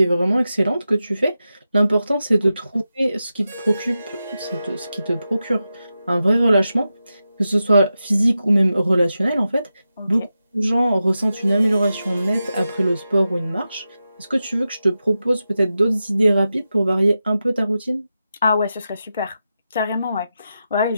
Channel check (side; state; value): both; inverted; correlation -0.91